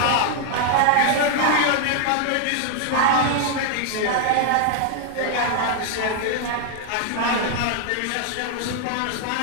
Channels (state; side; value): different; both; correlation 0.00